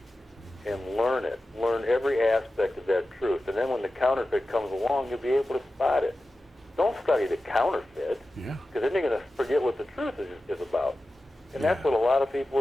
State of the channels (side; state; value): both; normal; correlation 0.94